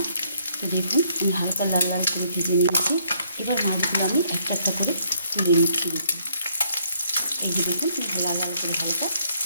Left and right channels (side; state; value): both; inverted; correlation -0.68